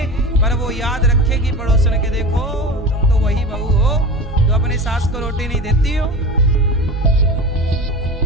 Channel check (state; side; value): normal; both; correlation 0.31